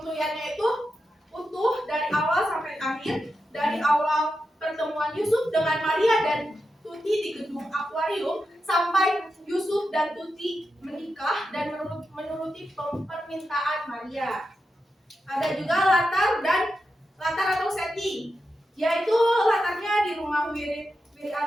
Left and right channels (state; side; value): normal; both; correlation 0.88